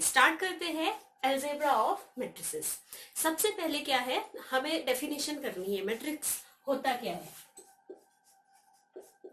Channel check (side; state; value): both; identical; correlation 1.00